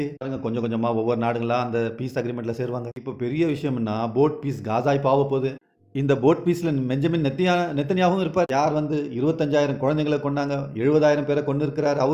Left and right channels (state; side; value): identical; both; correlation 1.00